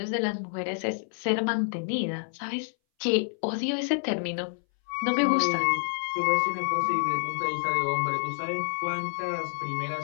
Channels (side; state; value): right; silent; 59 dB below the other